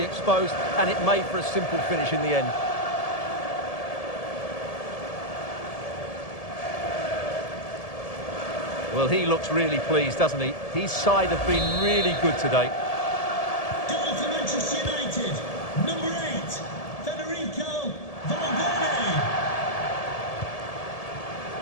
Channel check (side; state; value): right; late; 1.7 ms